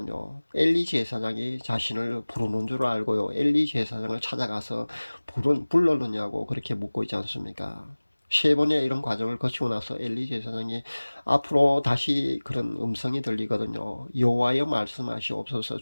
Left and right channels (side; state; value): both; inverted; correlation -1.00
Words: 엘리 제사장이 자신을 부르는 줄 알고요, 엘리 제사장을 찾아가서 불렀느냐고 그렇게 묻고 있지 않습니까? 세 번의 이런 과정을 거치고 나서 엘리 제사장이 앞으로 다시 그런 음성이 들리거든요. 여호와여 말씀하시옵소서,